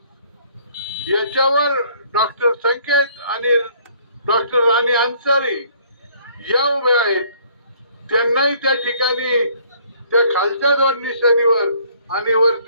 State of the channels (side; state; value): both; inverted; correlation -0.60